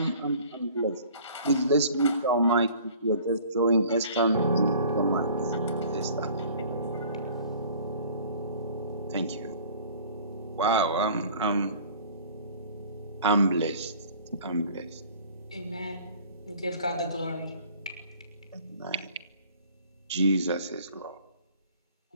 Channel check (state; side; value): inverted; both; correlation -0.49